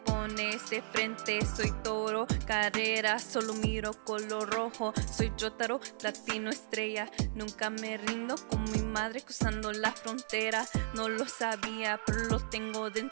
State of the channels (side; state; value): left; silent; digital silence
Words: de frente soy toro, carrera, solo miro color rojo, soy Yotaro, latino estrella, nunca me rindo con mi madre cruzando la frontera, no lo sabía, pero lo tengo